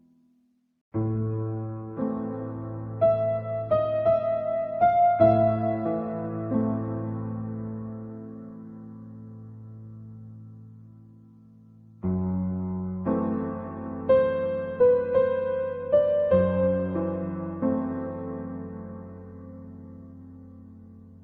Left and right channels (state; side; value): identical; both; correlation 1.00